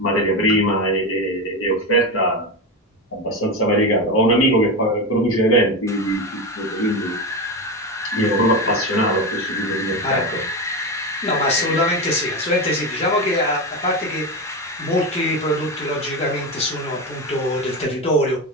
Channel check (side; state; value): both; normal; correlation 0.17